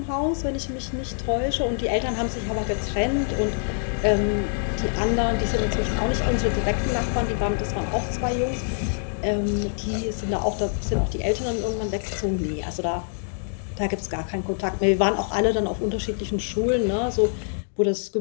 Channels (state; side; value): silent; right; 62 dB below the other